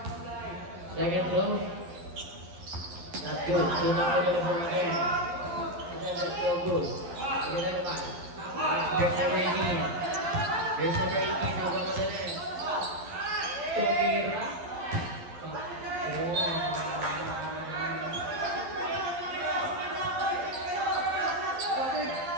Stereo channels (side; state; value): left; late; 11 ms